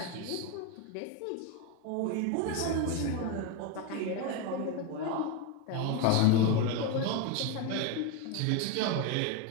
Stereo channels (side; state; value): both; different; correlation 0.02